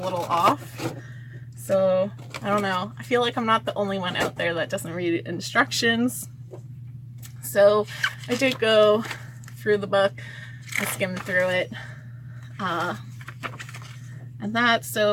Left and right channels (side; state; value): both; identical; correlation 1.00